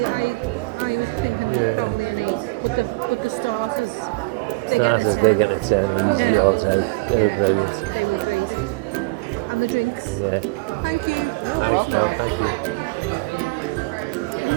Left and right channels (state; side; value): quieter; left; 26.0 dB